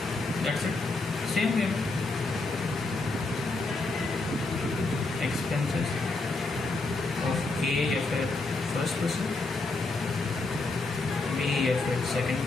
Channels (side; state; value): right; quieter; 3.4 dB